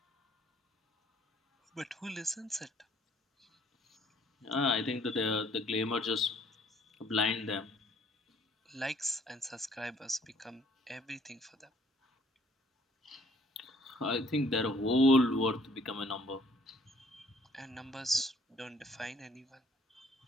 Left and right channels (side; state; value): both; normal; correlation 0.61